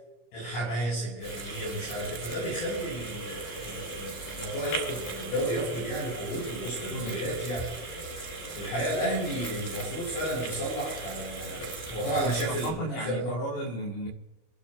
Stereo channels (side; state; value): right; late; 25 ms